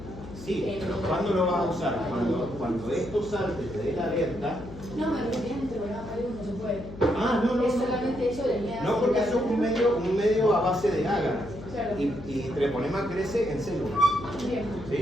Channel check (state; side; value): noise; left; hum, 13 dB below the sound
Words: Sí, pero ¿cuándo lo vas a usar? Cuando esto salte, te dé la alerta. No, me refería a interrogar algo, no se puede. Ah, no. Es solamente eso de miedo. No, porque eso es un medio a base de agar. Claro. Y treponema crece en células. Bien.